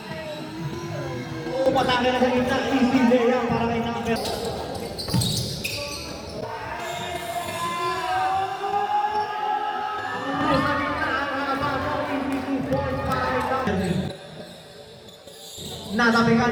Patake na sa gitna. Easy layup para kay number.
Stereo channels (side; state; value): both; identical; correlation 1.00